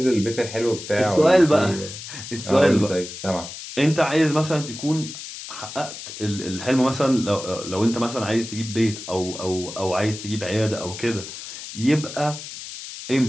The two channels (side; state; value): left; noise; hiss, 11 dB below the sound